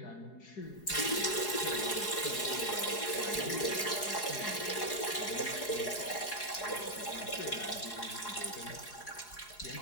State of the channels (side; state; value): right; late; 4.8 ms